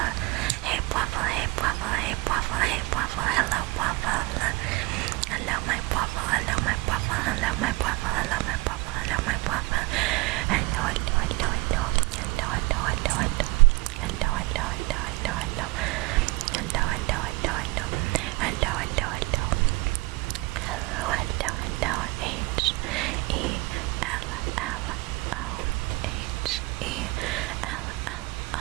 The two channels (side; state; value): left; quieter; 23.6 dB